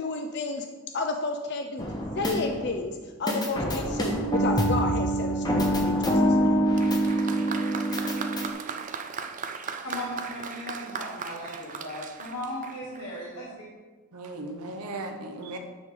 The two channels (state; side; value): normal; both; correlation 0.47